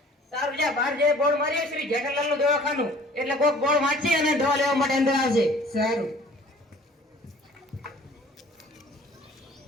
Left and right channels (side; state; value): both; normal; correlation 0.51